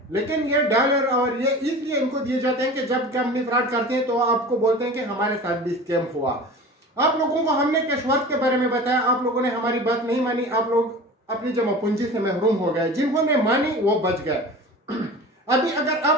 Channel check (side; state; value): both; normal; correlation 0.36